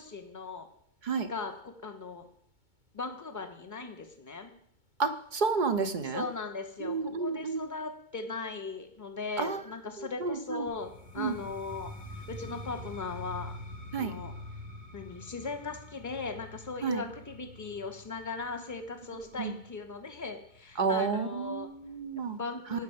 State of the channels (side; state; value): left; late; 2.2 ms